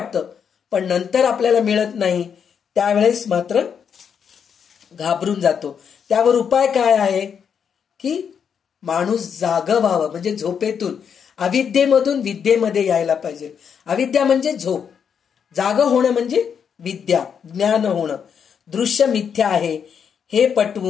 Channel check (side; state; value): right; quieter; 7.3 dB